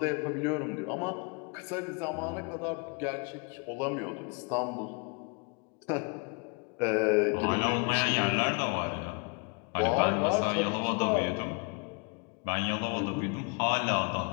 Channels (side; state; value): right; quieter; 34.0 dB